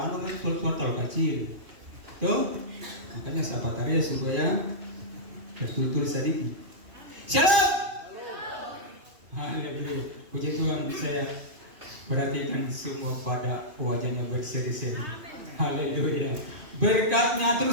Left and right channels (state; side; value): late; left; 2.5 ms